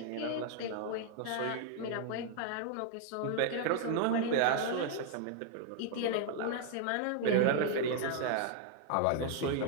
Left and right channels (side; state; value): both; different; correlation 0.00